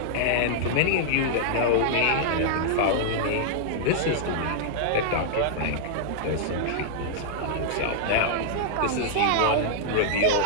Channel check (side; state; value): both; different; correlation -0.01